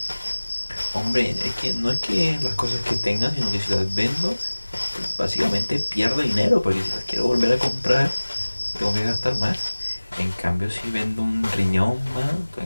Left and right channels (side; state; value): both; inverted; correlation -1.00